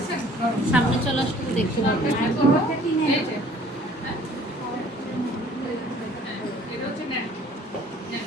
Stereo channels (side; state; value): both; normal; correlation 0.54